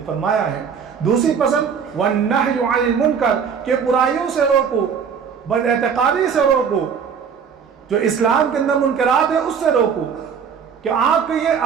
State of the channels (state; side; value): quieter; left; 6.8 dB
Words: فرمایا ہے۔ دوسری پسند والنہی عن المنکر، کہ برائیوں سے روکو، بد اعتقادی سے روکو، جو اسلام کے اندر منکرات ہیں اس سے روکو، کہ آپ کے یہ